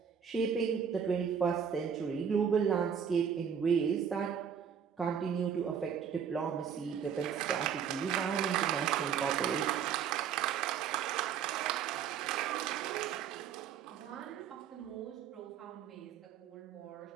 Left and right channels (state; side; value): quieter; left; 7.8 dB